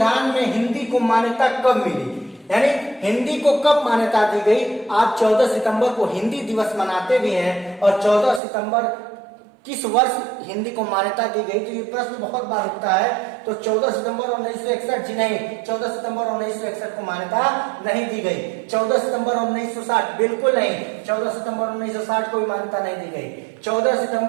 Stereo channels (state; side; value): drops out; left; at 8.4 s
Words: में हिंदी को मान्यता कब मिली, यानी हिंदी को कब मान्यता दी गई? आज 14 सितंबर को हिंदी दिवस मनाते भी हैं, और 14 सितंबर किस वर्ष हिंदी को मान्यता दी गई? तो ये प्रश्न बहुत बार उठता है। तो 14 सितंबर 1961 जी नहीं, 14 सितंबर 1961 को मान्यता नहीं दी गई। 14 सितंबर 1960 बिल्कुल नहीं, 14 सितंबर 1960 को भी मान्यता नहीं दी गई। 14